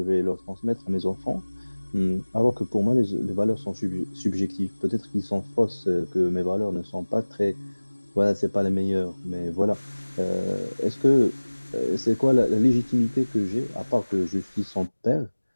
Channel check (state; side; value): inverted; both; correlation -1.00